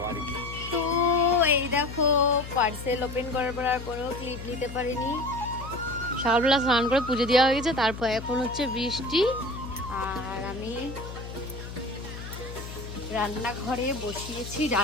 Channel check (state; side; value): noise; left; hum, 10 dB below the sound